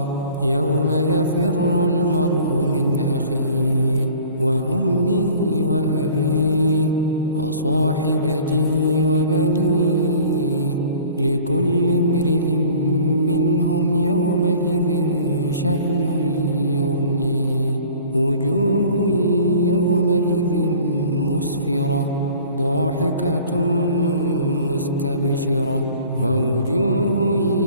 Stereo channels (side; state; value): both; inverted; correlation -0.48